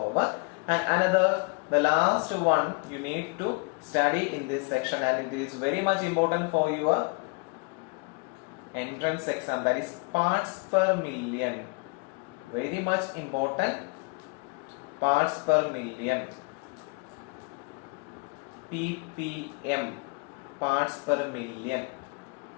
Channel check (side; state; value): right; quieter; 31.7 dB